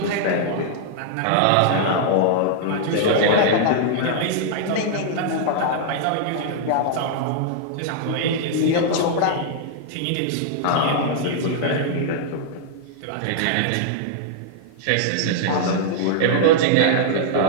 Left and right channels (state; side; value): different; both; correlation -0.01